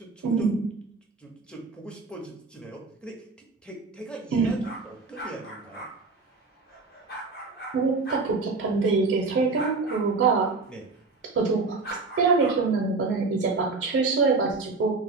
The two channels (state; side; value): quieter; left; 3.9 dB